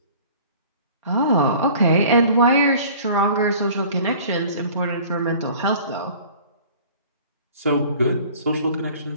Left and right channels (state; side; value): inverted; both; correlation -0.47